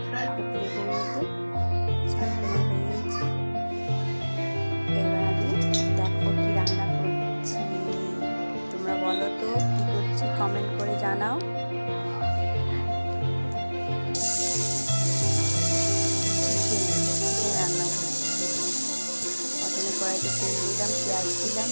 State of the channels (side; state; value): both; inverted; correlation -1.00